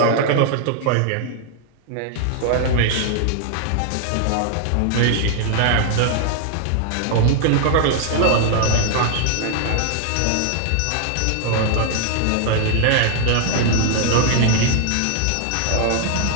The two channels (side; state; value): both; different; correlation 0.00